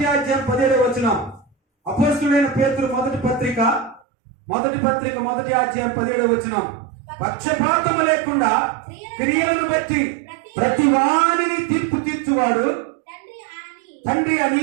అధ్యాయం 17వ వచనం. అపోస్తలుడైన పేతురు మొదటి పత్రిక 1వ అధ్యాయం 17వ వచనం. పక్షపాతము లేకుండా క్రియలను బట్టి ప్రతి వారిని తీర్పు తీర్చువాడు తండ్రి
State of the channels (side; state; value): left; drops out; at 4.0 s